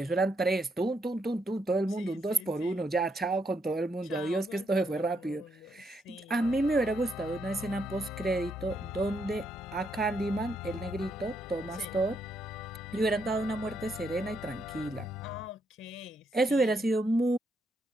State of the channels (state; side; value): normal; both; correlation 0.77